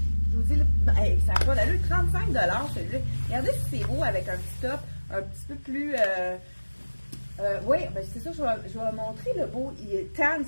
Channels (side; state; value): both; inverted; correlation -1.00